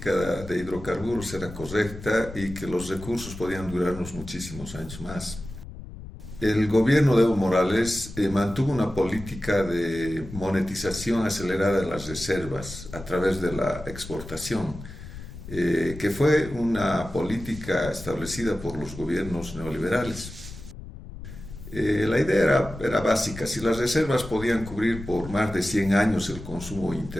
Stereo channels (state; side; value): noise; left; rumble, 13 dB below the sound